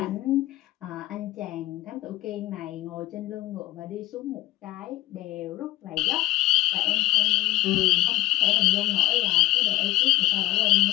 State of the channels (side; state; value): right; quieter; 17.4 dB